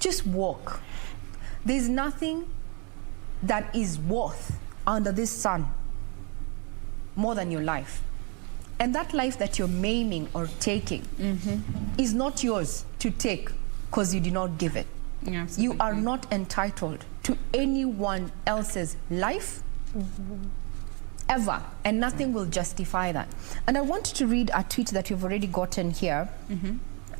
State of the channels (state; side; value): quieter; left; 34.4 dB